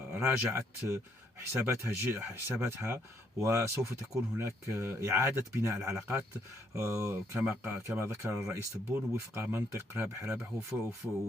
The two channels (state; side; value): normal; both; correlation 0.71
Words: راجعت حساباتها، وسوف تكون هناك إعادة بناء العلاقات كما ذكر الرئيس تبون وفق منطق رابح رابح،